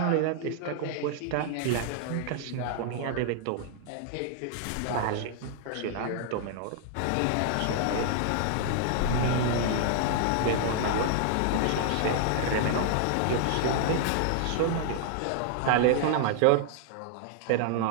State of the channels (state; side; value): different; both; correlation -0.01